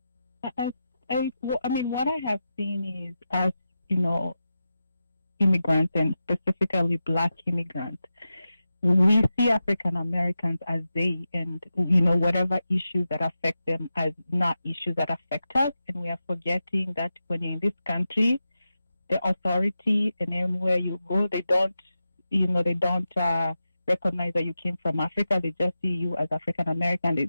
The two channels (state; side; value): inverted; both; correlation -0.91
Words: I mean, what I have seen is, as you know, immigrants, and specifically Black immigrants, we see African Americans as they, and you know, whatever issues that affect them as not issues that affect us, and we are forgetting that when you're in this country, the authority, and anywhere you go, they don't recognize that you came from Africa. They just see you as African American. They